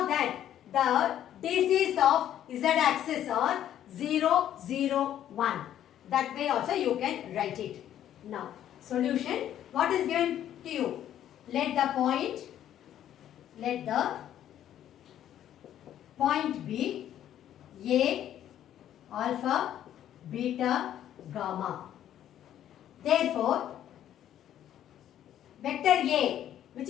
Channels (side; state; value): right; quieter; 11.1 dB